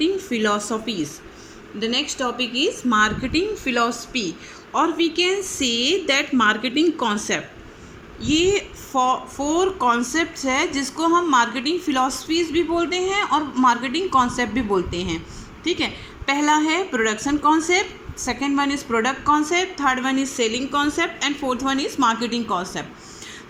philosophies. The next topic is marketing philosophy, or we can say that marketing concept. ये four concepts है जिसको हम marketing philosophies भी बोलते हैं और marketing concept भी बोलते हैं. ठीक है, पहला है production concept, second one is product concept, third one is selling concept and fourth one is marketing concept.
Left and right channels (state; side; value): identical; both; correlation 1.00